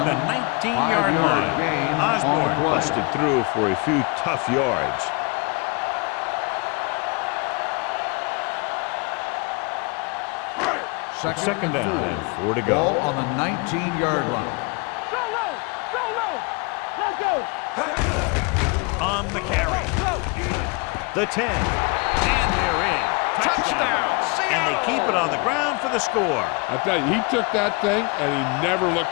the 19-yard line. Osborne busted through for a few tough yards. Second down and 4 to go. Ball on the 19-yard line. Solo. Let's go. On the carry. The 10. And they're in. Touchdown. And they keep it on the ground for the score. I tell you, he took that thing and he never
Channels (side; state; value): right; quieter; 30.7 dB